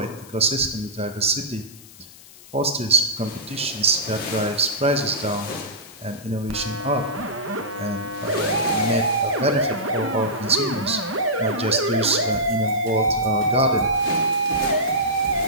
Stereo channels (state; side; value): noise; left; hiss, 21 dB below the sound